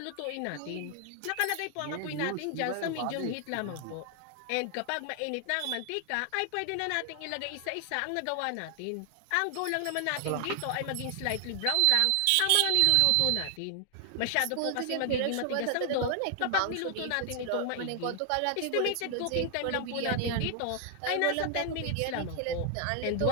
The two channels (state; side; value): different; both; correlation 0.00